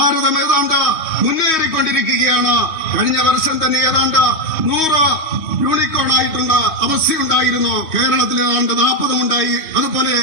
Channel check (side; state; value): right; late; 3.1 ms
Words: ഏതാണ്ട് മുന്നേറിക്കൊണ്ടിരിക്കുകയാണ്. കഴിഞ്ഞ വർഷം തന്നെ ഏതാണ്ട് 100 യൂണിക്കോൺ ആയിട്ടുള്ള അവസ്ഥയുണ്ടായിരുന്നു. കേരളത്തിൽ ഏതാണ്ട് 40 ഉണ്ടായി. അതുപോലെ